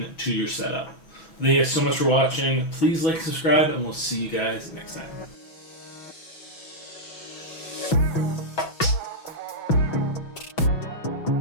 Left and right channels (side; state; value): right; late; 6.1 ms